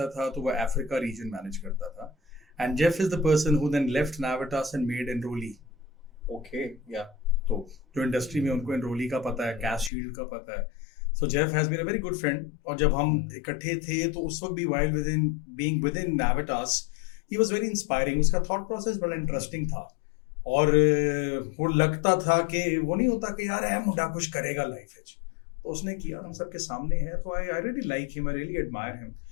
था तो वो अफ्रीका रीजन मैनेज करता था, and Jeff is the person who then left Navitas and made Enroly. Okay, या तो जो इंडस्ट्री में उनको एनरोली का पता है, कैश शील्ड का पता है, so Jeff has been a very good friend, और जब हम इकट्ठे थे तो उस वक्त भी while within Navitas he was very inspiring. उसका थॉट प्रोसेस बड़ा इंटरेस्टिंग था, और वो लगता था कि वो नहीं होता कि यार है मुंडा कुछ करेगा लाइफ में, तो उसने किया, हम सबके सामने है. तो I really like him, I really admire him,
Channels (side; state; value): right; drops out; at 9.9 s